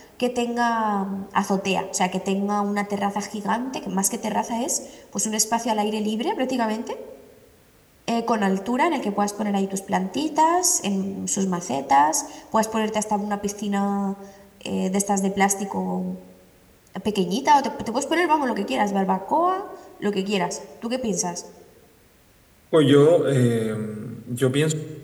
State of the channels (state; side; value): identical; both; correlation 1.00